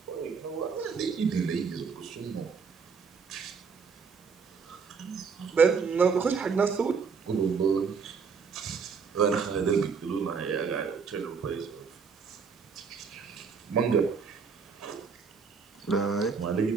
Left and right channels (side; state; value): left; quieter; 5.6 dB